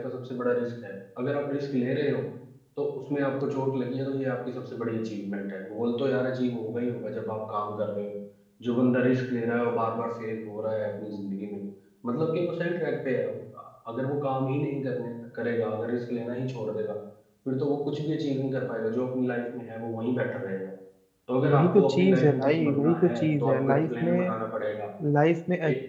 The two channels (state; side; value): identical; both; correlation 1.00